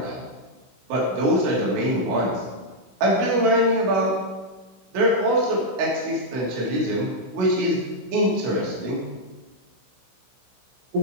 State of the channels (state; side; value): late; left; 16 ms